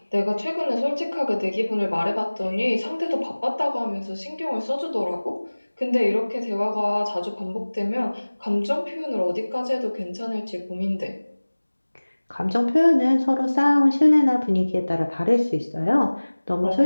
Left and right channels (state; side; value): inverted; both; correlation -1.00